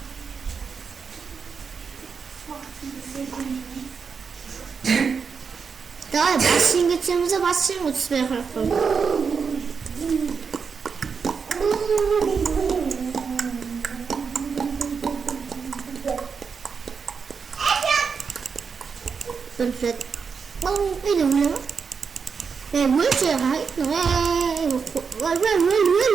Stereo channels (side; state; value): left; quieter; 5.8 dB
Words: Давай бассейн кетсеміз, бассейн өтіспей қарап қойып. Perfect. Bông cái đường nữa. Nè mới chưa hãy bông